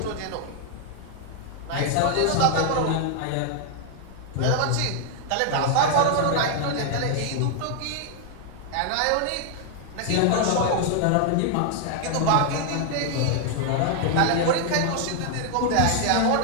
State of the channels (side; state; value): both; different; correlation 0.00